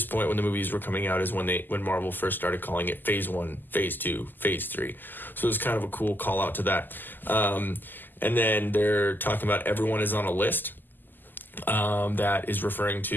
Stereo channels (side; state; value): right; late; 0.089 ms